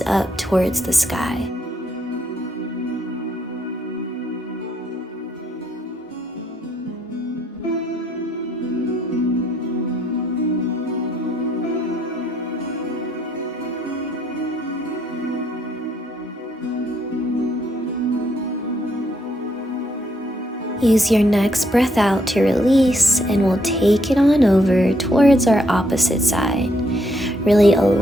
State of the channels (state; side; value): normal; both; correlation 0.73